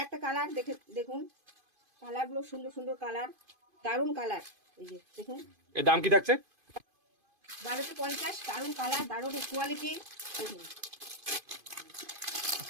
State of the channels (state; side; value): late; left; 2.5 ms